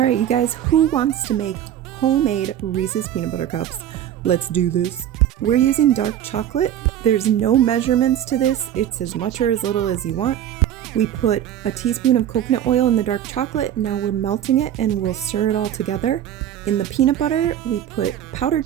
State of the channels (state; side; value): quieter; left; 10.9 dB